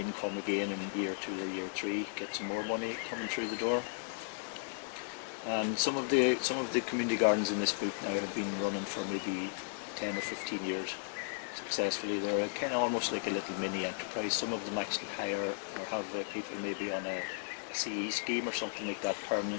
again in year 2 or year 3. Get some more money coming through the door. And some of the community gardens in this book now have been running for maybe 10 or 15 years successfully. They're kind of almost like a little mini enterprise. Some of them actually hire or have people maybe on a CE scheme or something like that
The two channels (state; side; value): silent; right; digital silence